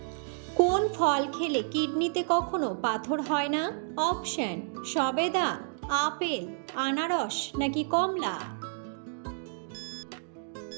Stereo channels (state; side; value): silent; left; digital silence